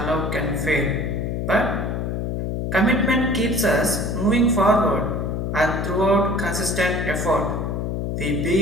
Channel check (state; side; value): noise; left; hum, 2 dB below the sound